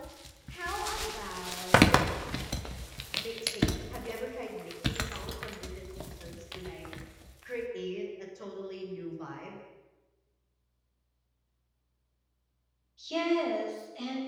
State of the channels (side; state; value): both; identical; correlation 1.00